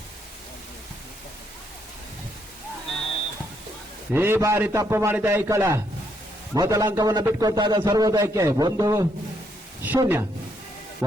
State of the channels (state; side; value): normal; both; correlation 0.75